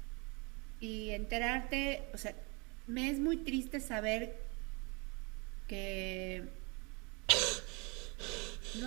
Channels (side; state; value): left; quieter; 30.3 dB